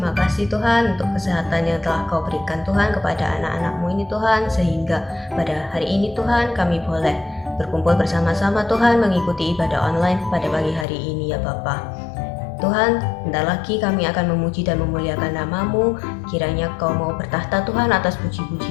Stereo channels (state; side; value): drops out; right; at 10.9 s